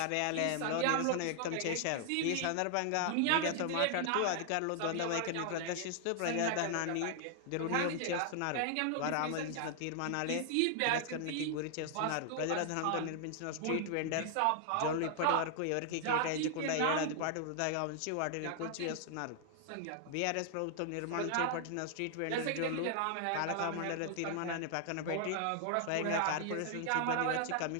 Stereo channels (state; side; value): different; both; correlation 0.00